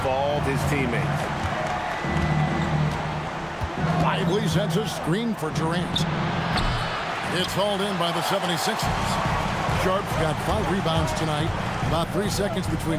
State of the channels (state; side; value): identical; both; correlation 1.00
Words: his teammates. Lively sets a screen for Durant. It's hauled in by the 76ers. Sharp's got 5 rebounds tonight. About 3 seconds